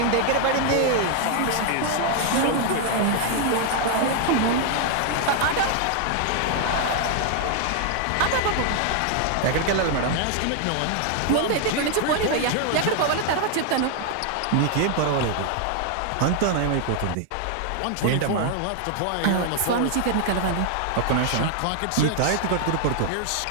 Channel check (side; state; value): both; different; correlation 0.00